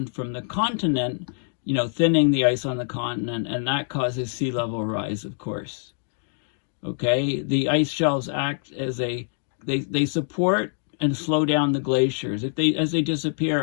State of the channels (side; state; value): right; silent; digital silence